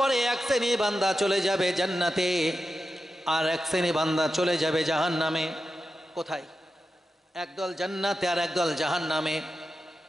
পরে এক শ্রেণী বান্দা চলে যাবে জান্নাতে, আর এক শ্রেণী বান্দা চলে যাবে জাহান্নামে। কোথায়? একদল জান্নাতে আর একদল জাহান্নামে।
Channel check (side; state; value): both; normal; correlation 0.90